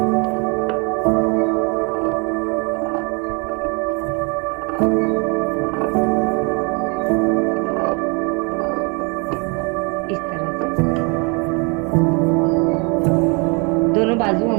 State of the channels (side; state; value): left; quieter; 32.7 dB